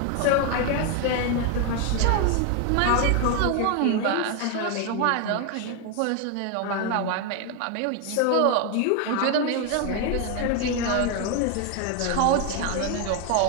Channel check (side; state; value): both; different; correlation 0.01